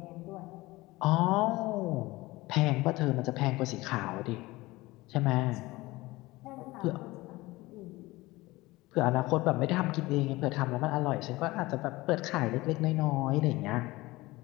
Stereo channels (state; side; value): quieter; right; 20.2 dB